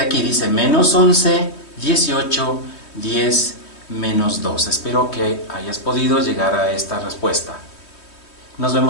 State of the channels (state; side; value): late; right; 3.2 ms